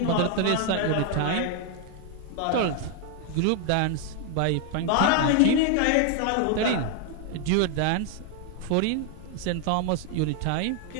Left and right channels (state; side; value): different; both; correlation 0.00